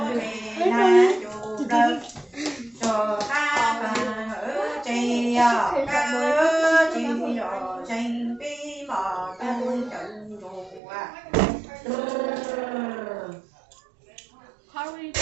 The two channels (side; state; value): left; drops out; at 10.8 s